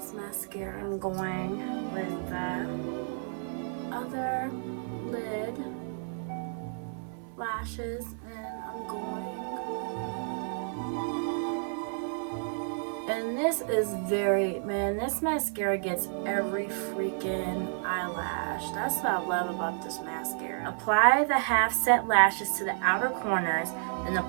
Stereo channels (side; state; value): left; silent; 57 dB below the other